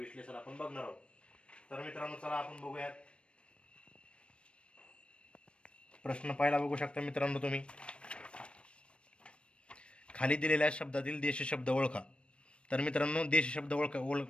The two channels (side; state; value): right; late; 0.058 ms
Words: आपण बघणार आहोत. तर मित्रांनो, चला आपण बघूयात. प्रश्न पहिला बघू शकता मित्रांनो तुम्ही. खाली दिलेल्या शब्दातील देशी शब्द ओळखा. तर मित्रांनो, देशी शब्द